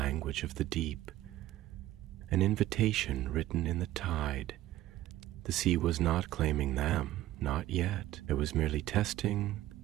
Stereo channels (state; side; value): quieter; left; 14.8 dB